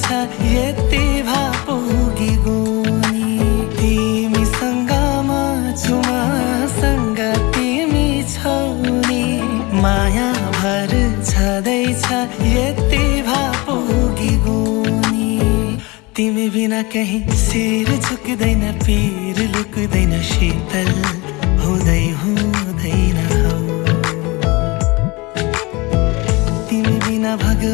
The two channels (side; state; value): right; quieter; 24.8 dB